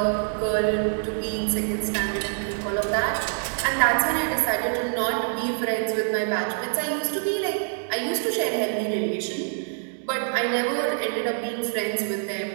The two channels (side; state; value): left; silent; 61 dB below the other